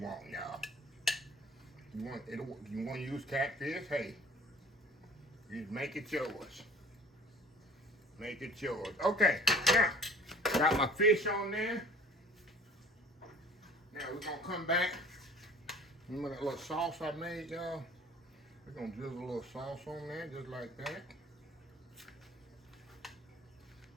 y'all. You want to use catfish? Hey, you make it yours. Make it yours. Okay, now got my fish on there. Now we're gonna come back. Remember that little sauce I made, y'all? We're gonna drizzle a little sauce on there, just like that.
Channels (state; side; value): normal; both; correlation 0.48